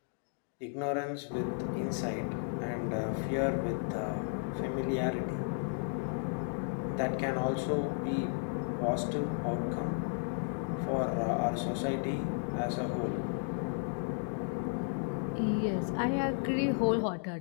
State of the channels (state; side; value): silent; right; 55 dB below the other